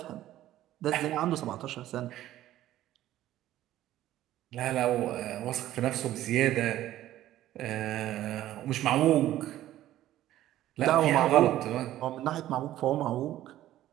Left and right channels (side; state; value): left; quieter; 13.7 dB